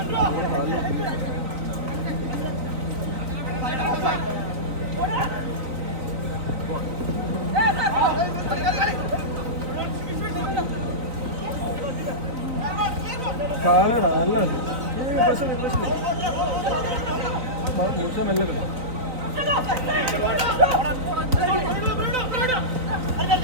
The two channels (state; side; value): late; left; 3.9 ms